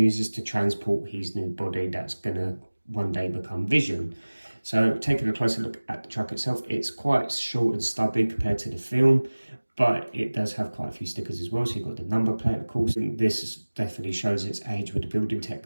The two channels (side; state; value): both; inverted; correlation -1.00